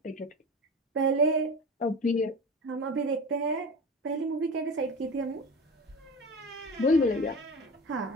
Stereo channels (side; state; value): both; normal; correlation 0.31